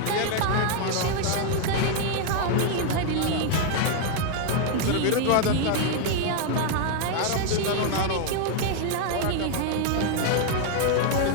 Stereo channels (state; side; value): different; both; correlation 0.00